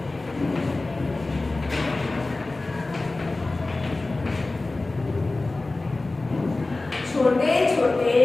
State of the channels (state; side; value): quieter; right; 3.1 dB